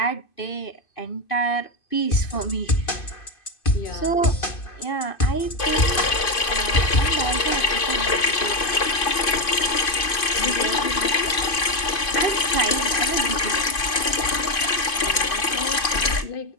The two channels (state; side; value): late; right; 2.5 ms